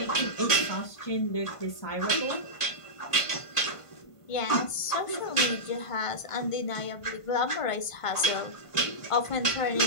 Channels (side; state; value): right; late; 1.5 ms